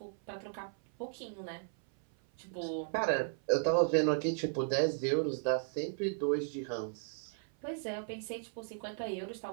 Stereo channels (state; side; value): silent; left; 54 dB below the other